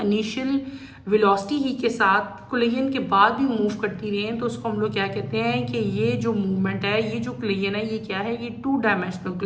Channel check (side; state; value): both; identical; correlation 1.00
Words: इनिशियल वेलोसिटी ही के साथ कोलिजन के बाद भी मूव करती रही हैं, तो उसको हम लोग क्या कहते हैं कि ये जो मूवमेंट है, ये जो कोलिजन है, ये क्या है? ये टू डायमेंशनल